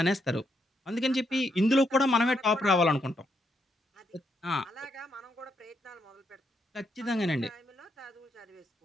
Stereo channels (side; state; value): both; normal; correlation 0.78